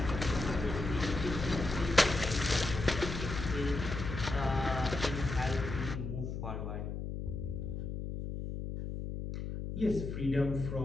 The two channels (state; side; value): noise; left; hum, 5 dB below the sound